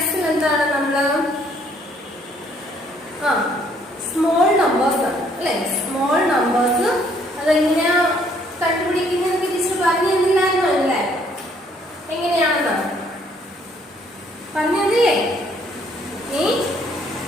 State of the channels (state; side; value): normal; both; correlation 0.65